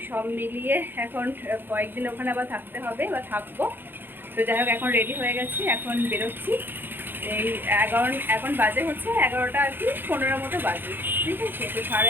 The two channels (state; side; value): late; left; 0.098 ms